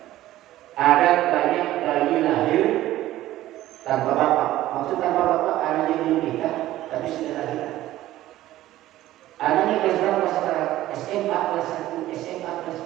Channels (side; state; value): left; quieter; 14.9 dB